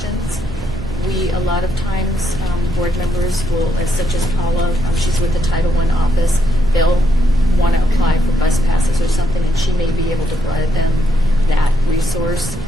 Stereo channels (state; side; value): normal; both; correlation 0.77